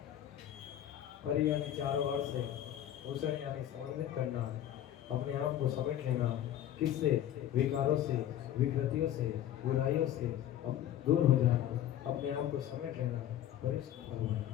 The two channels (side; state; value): right; quieter; 11.5 dB